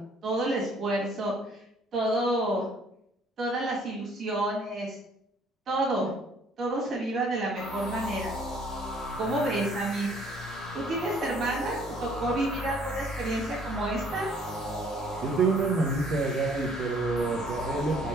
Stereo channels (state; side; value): normal; both; correlation 0.59